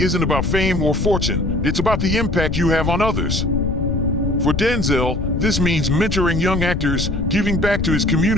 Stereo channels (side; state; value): left; noise; rumble, 3 dB below the sound